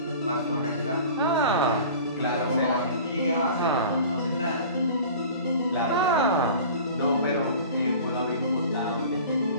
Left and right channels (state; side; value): inverted; both; correlation -0.42